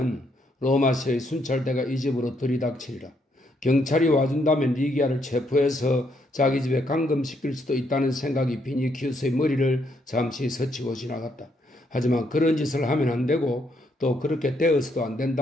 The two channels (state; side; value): normal; both; correlation 0.74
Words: 로마시의 순찰대가 이 집으로 들이닥치리라. 경찰이 와준다면 리기아를 체포해서 자기 집에 감금시킬 수도 있다는 생각이 비니키우스의 머리를 잠시 스치고 지나갔다. 하지만 그런 짓을 하면 안 되고 또 그렇게 되어서도 안